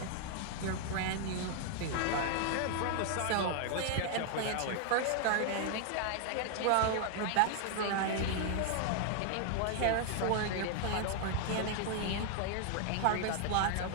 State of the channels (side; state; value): both; different; correlation 0.00